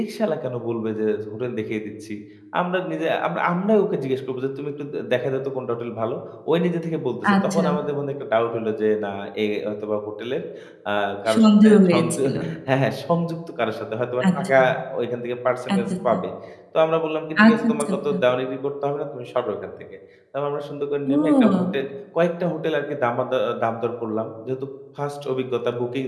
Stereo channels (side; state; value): both; identical; correlation 1.00